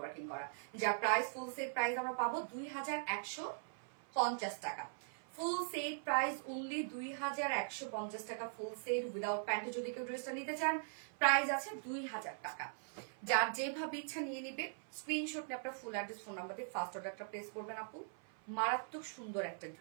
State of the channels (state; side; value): silent; left; 50 dB below the other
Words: করা। যার প্রাইস ফুল সেট প্রাইস আমরা পাবো 2150 টাকা। ফুল সেট প্রাইস অনলি 2150 টাকা ফুল সেট উইদাউট প্যান্টে যদি কেউ ড্রেসটা নিতে চান প্রাইস আছে 2000 টাকা। যার যেভাবে ইচ্ছা নিয়ে নিবে, স্ক্রিনশট নিয়ে আপনার ফুল অ্যাড্রেস ফোন নাম্বার দিয়ে ফার্স্ট অর্ডারটা প্লেস করবেন আপু। মারাত্মক সুন্দর একটা